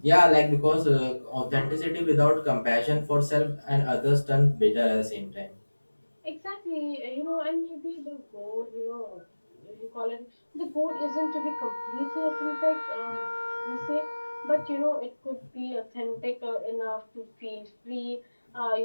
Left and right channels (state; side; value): inverted; both; correlation -1.00